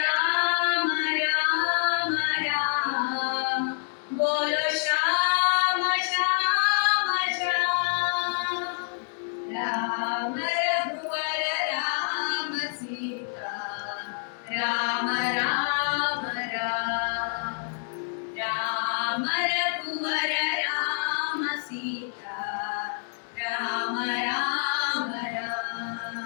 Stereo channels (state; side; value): silent; right; 60 dB below the other